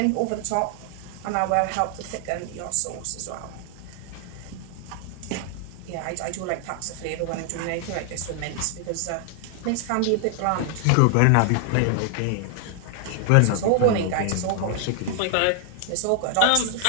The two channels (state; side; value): different; both; correlation 0.00